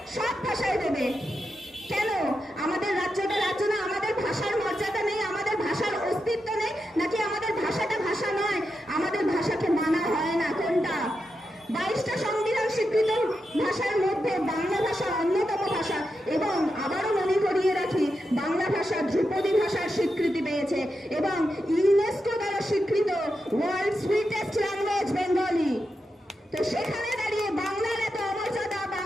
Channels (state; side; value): normal; both; correlation 0.87